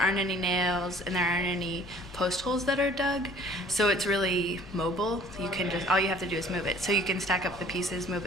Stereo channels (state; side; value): noise; left; rumble, 21 dB below the sound